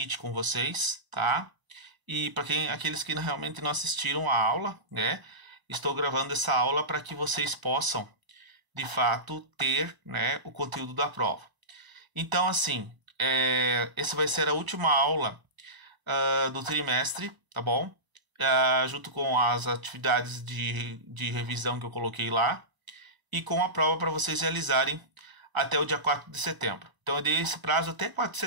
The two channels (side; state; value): left; late; 1.0 ms